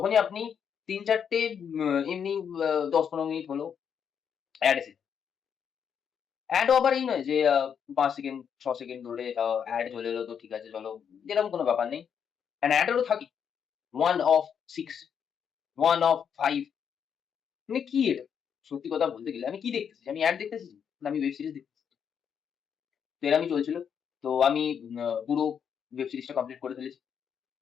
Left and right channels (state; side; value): quieter; right; 7.6 dB